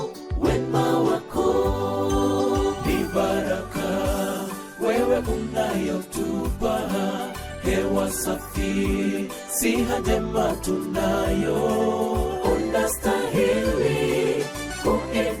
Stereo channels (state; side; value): identical; both; correlation 1.00